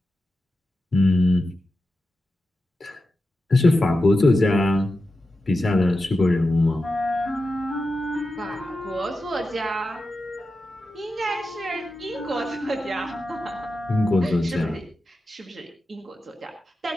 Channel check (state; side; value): normal; both; correlation 0.91